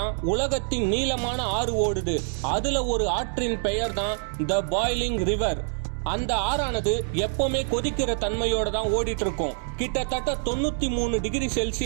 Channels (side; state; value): left; silent; digital silence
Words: உலகத்தின் நீளமான ஆறு ஓடுது. அதுல ஒரு ஆற்றின் பெயர் தான் த பாய்லிங் ரிவர். அந்த ஆறானது எப்பவுமே கொதிக்கிற தன்மையோட தான் ஓடிட்டு இருக்கும். கிட்டத்தட்ட 93 டிகிரி